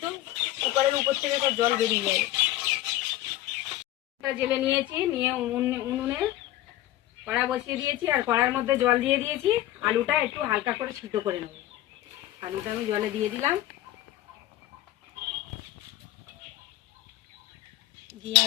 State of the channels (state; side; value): quieter; right; 14.7 dB